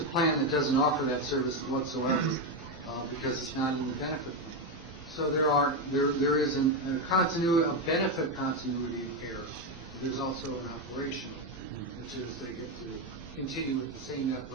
a plan that doesn't offer that service whatsoever because it's not in the benefit plan. So there is a continuity, a benefit continuity of care. There's also an operation, which is they get to continue with the same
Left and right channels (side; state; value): both; normal; correlation 0.09